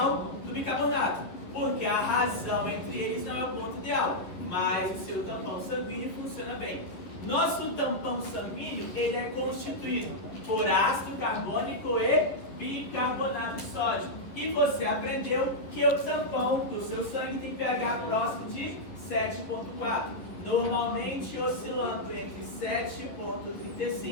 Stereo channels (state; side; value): late; right; 11 ms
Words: do bicarbonato, porque a razão entre eles não é o ponto ideal, mas o seu tampão sanguíneo funciona bem. Nosso tampão sanguíneo, ele é constituído por ácido carbônico e bicarbonato de sódio. E você aprendeu que o tampão do seu sangue tem pH próximo de 7,4. Normalmente oscilando entre